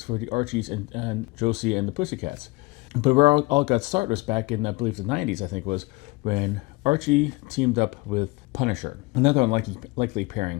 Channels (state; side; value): quieter; right; 24.1 dB